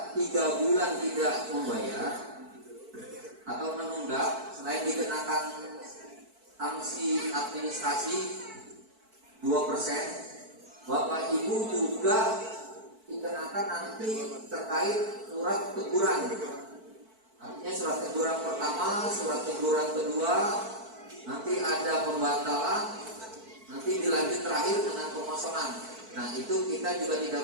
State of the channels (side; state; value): left; late; 4.5 ms